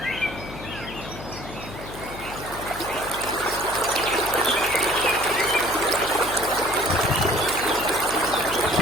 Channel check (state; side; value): noise; left; hum, 13 dB below the sound